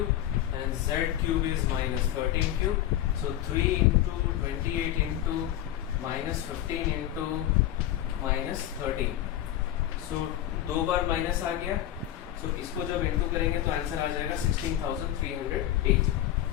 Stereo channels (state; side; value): quieter; right; 12.6 dB